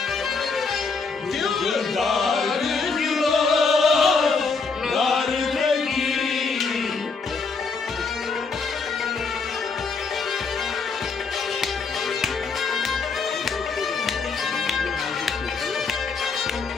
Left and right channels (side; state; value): right; quieter; 4.7 dB